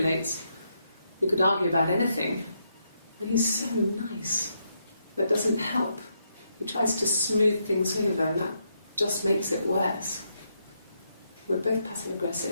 We could argue about anything. And he's so nice. That doesn't help. He tries to smooth things over, and that just makes it worse. We're both passive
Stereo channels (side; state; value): both; inverted; correlation -0.79